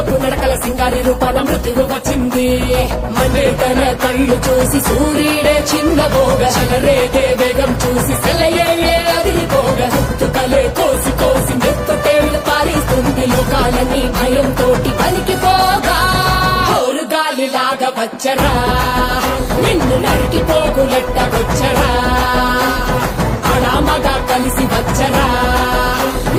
నడకల సింగారి రూపాల మృత్యువు వచ్చింది మనే తన కళ్ళు చూసి సూర్యుడే చిన్నబోగ చలరేగే వేగం చూసి సెలయే అదిరిపోగ తుకలే కోసి కోసి మెత్తటేళ్లు పారిస్తుంది లోకాలని భయం తోటి పలికిపోగా గాలిలాగా వచ్చరా నిన్ను నరికి పోగులెట్టగొచ్చరా అడామగా కలిసి వచ్చరా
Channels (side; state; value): both; identical; correlation 1.00